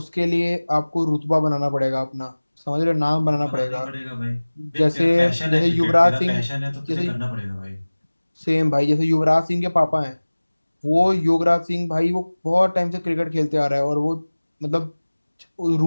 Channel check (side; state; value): both; inverted; correlation -1.00